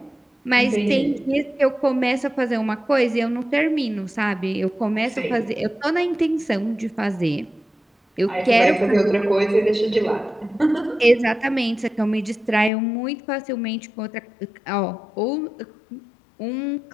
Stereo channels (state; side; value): drops out; right; at 12.7 s